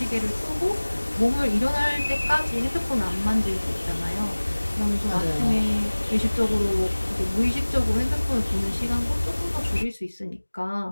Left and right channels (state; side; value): inverted; both; correlation -1.00